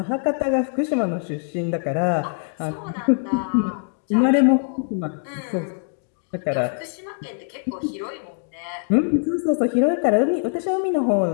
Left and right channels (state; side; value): silent; right; 55 dB below the other